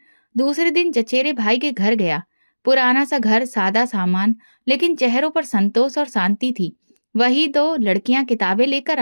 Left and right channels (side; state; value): both; inverted; correlation -1.00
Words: दूसरे दिन चचेरे भाई के घर गया। पुराना सा घर, सादा सामान, लेकिन चेहरों पर संतोष और शांति थी। वही दो लड़कियां किताबें लेकर